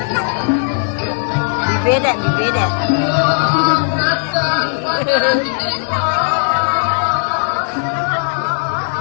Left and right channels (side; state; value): right; silent; digital silence